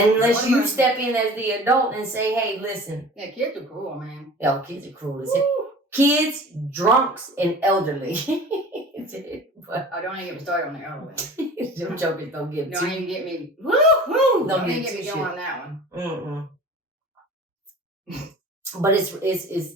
you step in as the adult and say, hey, listen. Yeah, kids are cruel, man. Yeah, kids are cruel as hell. Kids, drunks, and elderly. But I don't even get me started on the elderly. Them jokers don't get me. Don't even get me. Woo-hoo! Don't even get me going on that one. But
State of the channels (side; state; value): both; normal; correlation 0.41